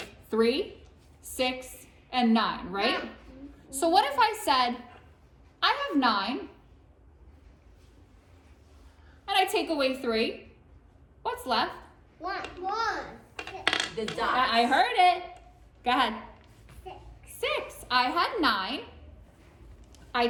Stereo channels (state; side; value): identical; both; correlation 1.00